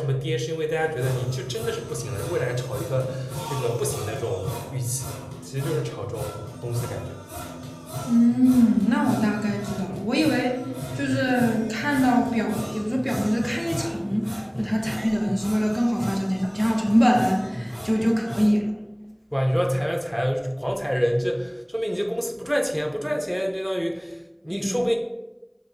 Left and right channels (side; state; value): both; identical; correlation 1.00